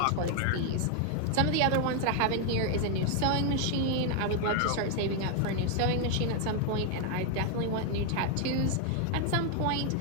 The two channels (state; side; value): different; both; correlation 0.00